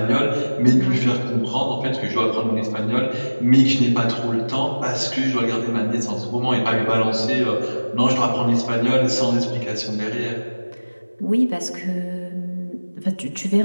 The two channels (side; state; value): both; inverted; correlation -1.00